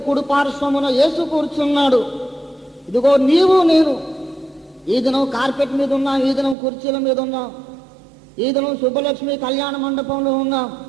కుడిపార్శ్వమున యేసు కూర్చున్నాడు. ఇదిగో నీవు నేను ఈ దినం కార్పెట్ మీద ఉన్నా, ఈ దినం కుర్చీల మీద ఉన్నా, ఈ దినం సుబ్బలక్ష్మి కళ్యాణ మండపంలో ఉన్నాం.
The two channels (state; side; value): drops out; left; at 6.6 s